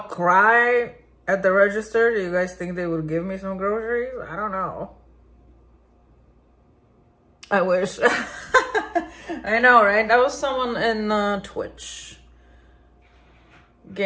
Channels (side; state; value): both; identical; correlation 1.00